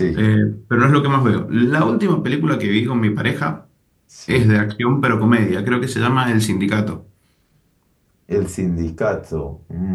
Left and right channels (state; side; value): identical; both; correlation 1.00